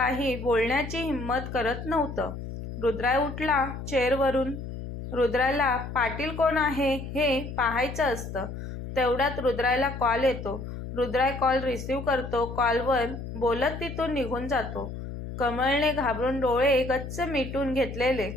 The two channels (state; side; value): noise; left; hum, 8 dB below the sound